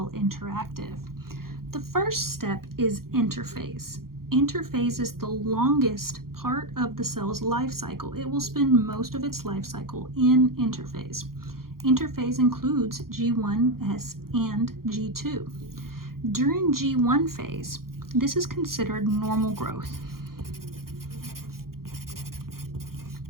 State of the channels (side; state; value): left; late; 0.92 ms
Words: Interactive. The first step is interphase. Interphase is the longest part of the cell's life cycle. It will spend most of its life cycle in interphase. Interphase includes G1, S, and G2. During G1 phase, this is considered normal growth.